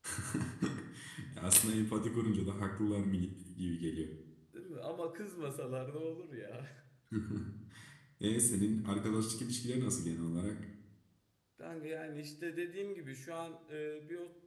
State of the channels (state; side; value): identical; both; correlation 1.00